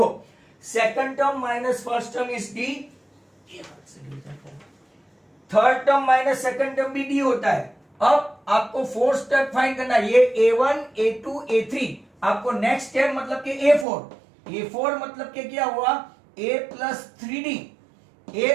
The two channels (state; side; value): drops out; left; at 13.9 s